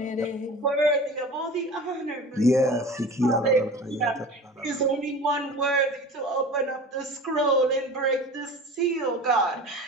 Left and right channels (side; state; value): both; normal; correlation 0.37